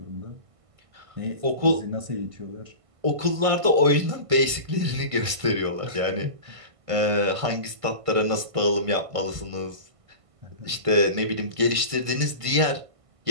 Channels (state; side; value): late; left; 1.5 ms